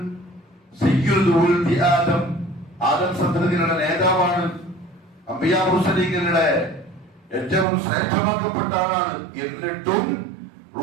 സയ്യിദുൽ വൽദി ആദം, ആദം സന്തതികളുടെ നേതാവാണ്. അംബിയാ മുർസലീങ്ങളുടെ ഏറ്റവും ശ്രേഷ്ഠമാക്കപ്പെട്ട ആളാണ്. എന്നിട്ടും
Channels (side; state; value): left; drops out; at 7.7 s